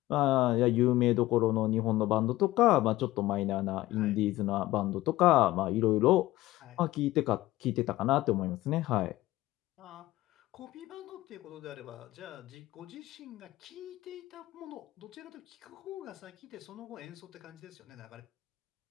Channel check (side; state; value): right; quieter; 16.9 dB